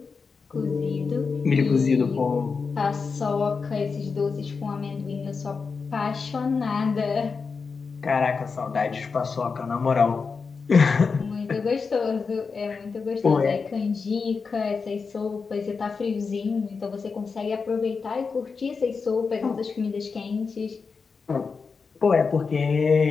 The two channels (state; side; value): quieter; right; 5.0 dB